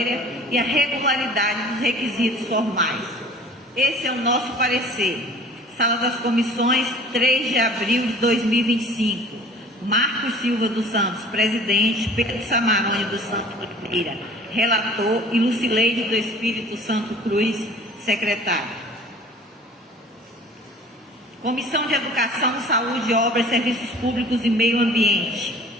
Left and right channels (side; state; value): both; normal; correlation 0.47